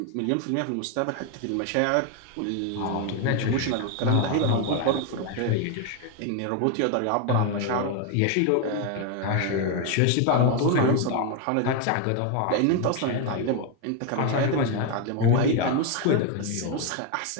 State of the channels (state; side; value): different; both; correlation 0.01